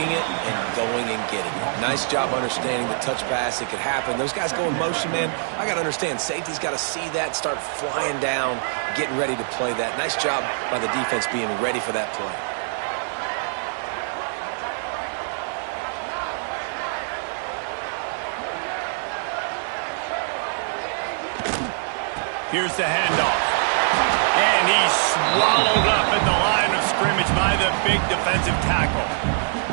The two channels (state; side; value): silent; left; digital silence